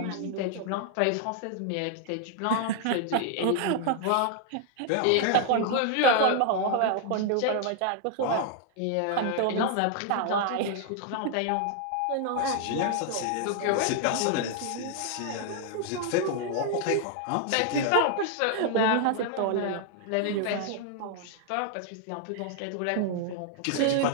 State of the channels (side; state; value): both; different; correlation 0.00